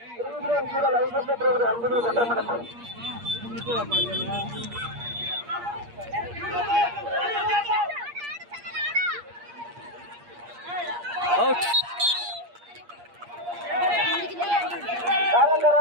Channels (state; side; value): late; left; 8.5 ms